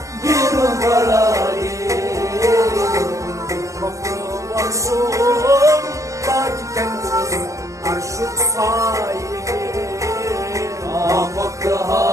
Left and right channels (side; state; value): left; late; 0.15 ms